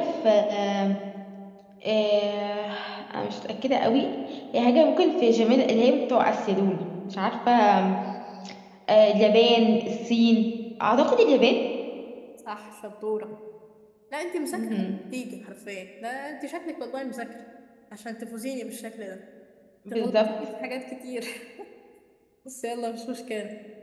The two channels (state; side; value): identical; both; correlation 1.00